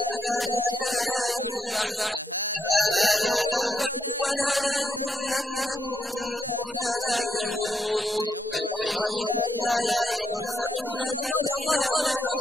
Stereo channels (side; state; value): both; normal; correlation 0.78